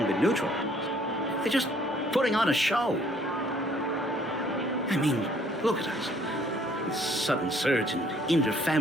been neutralized. They're just putting on a show. I mean, look at us. This sudden surge in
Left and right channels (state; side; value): normal; both; correlation 0.61